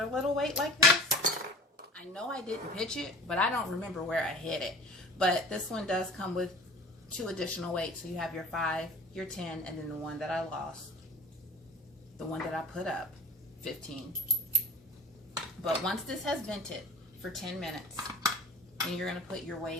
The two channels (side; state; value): both; normal; correlation 0.41